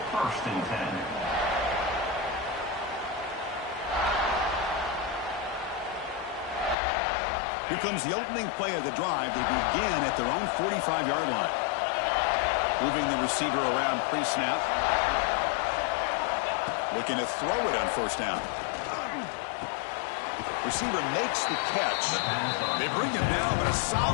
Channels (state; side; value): drops out; right; at 6.8 s